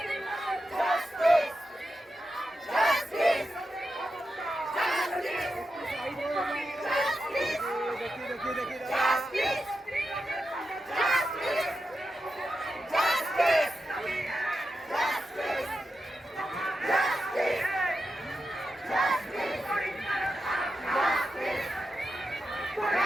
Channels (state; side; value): normal; both; correlation 0.89